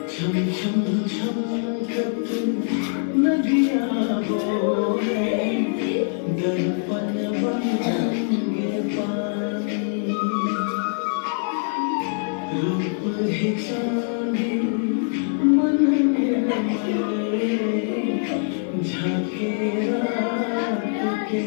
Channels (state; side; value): silent; right; 63 dB below the other